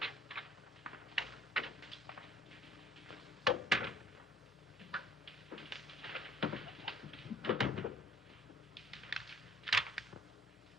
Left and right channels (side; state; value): both; normal; correlation 0.56